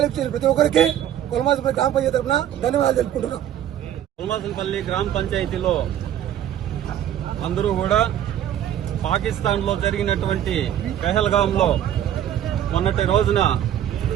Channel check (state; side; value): quieter; left; 10.9 dB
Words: చేసిన ప్రతి ఒక్కరికి పొలమాసనపల్లి గ్రామ పంచాయతీ తరఫున ధన్యవాదాలు తెలుపుకుంటున్నాం. పొలమాసనపల్లి గ్రామ పంచాయతీలో అందరూ కూడా పాకిస్తాన్ లో జరిగినటువంటి పెహల్గాంలో మొన్నటి రోజున